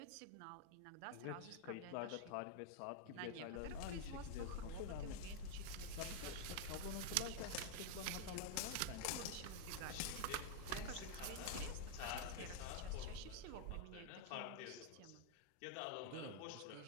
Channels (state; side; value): different; both; correlation 0.00